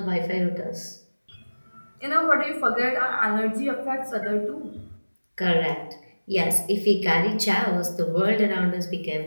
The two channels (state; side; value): inverted; both; correlation -1.00